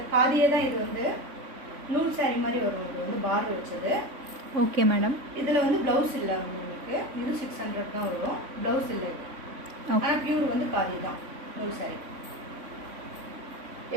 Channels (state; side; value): late; left; 3.5 ms